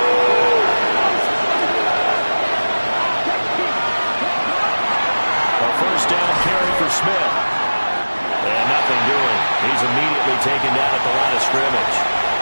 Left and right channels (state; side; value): inverted; both; correlation -1.00